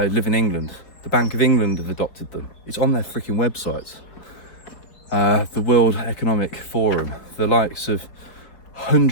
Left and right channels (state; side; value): late; right; 4.4 ms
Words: live in England. The Bank of England have adopted them. It's on their freaking websites. The World Economic Forum, the likes of